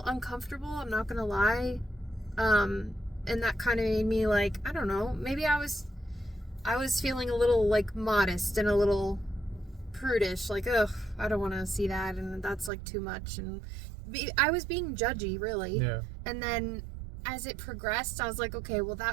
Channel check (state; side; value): drops out; left; at 12.7 s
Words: uncomfortable, I'm not gonna lie. And that kind of made me like, I don't know, maybe I was feeling a little like modest and a little prudish, like, ugh, I don't want to see that, and that's like too much, and I was being judgy, really. Yeah. And then as it progressed, I was like, okay, well,